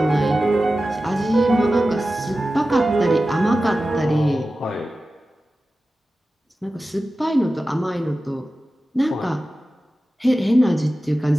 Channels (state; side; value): normal; both; correlation 0.94